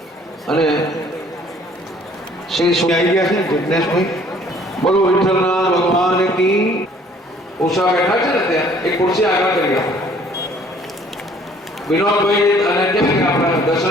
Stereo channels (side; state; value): both; normal; correlation 0.57